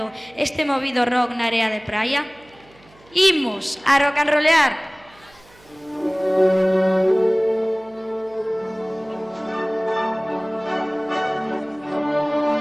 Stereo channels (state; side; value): noise; right; hum, 28 dB below the sound